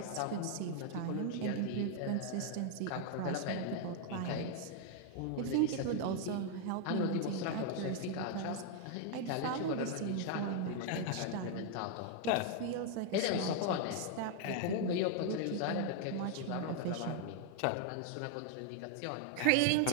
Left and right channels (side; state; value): both; different; correlation 0.00